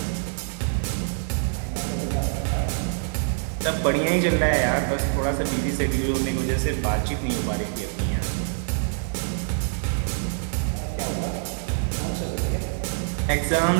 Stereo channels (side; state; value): left; silent; digital silence